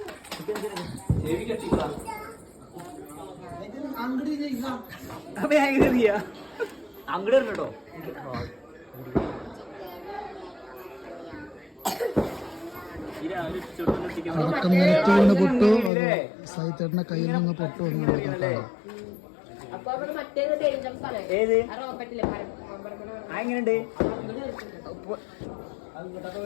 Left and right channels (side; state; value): right; drops out; at 15.9 s